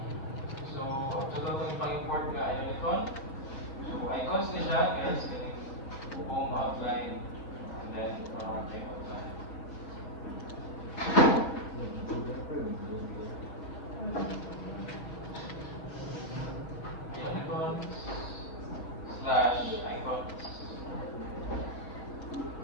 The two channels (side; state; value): right; late; 6.0 ms